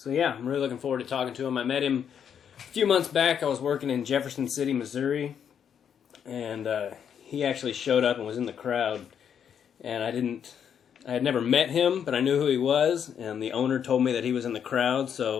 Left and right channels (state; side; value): quieter; right; 8.2 dB